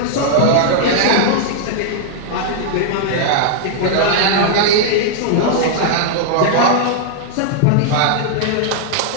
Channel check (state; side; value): different; both; correlation -0.01